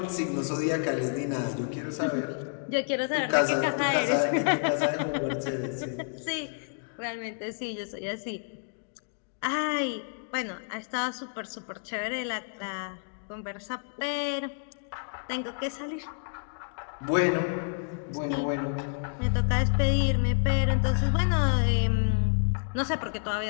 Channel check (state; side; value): silent; right; digital silence